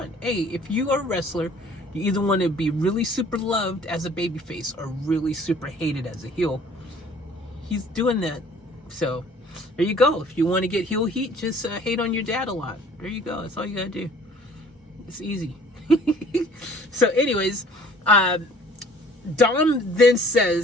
Hey, if you are a wrestler, you either want to be really super loved as a babyface or really super hated as a heel. He's doing that. So there you go. If you want to get heel heat, just hate on your dad a lot. There you go. That's all you gotta do. It's easy. So anyways, Dom then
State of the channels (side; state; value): both; normal; correlation 0.53